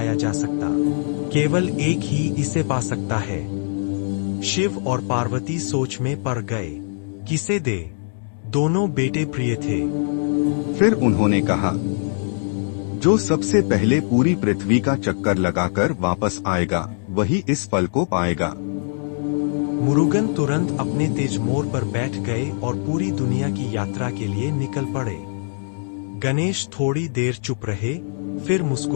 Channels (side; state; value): right; silent; 64 dB below the other